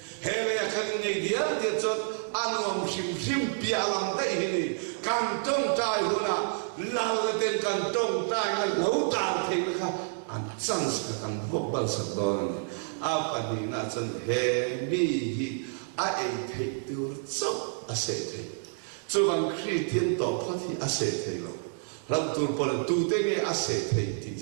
hay là cái ngày đĩa thì cho ăn uống sim bia làm đấy này càng trong tay hơn là lao lên càng trong tay là lâu tàn thì là an chance ka kan bok bal sak don a pani na chan he mi hi a ei thei tur chok a se thei chu bang Christian to phathi a se thei lo ram tur por tu te nge a se thei ti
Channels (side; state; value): left; silent; digital silence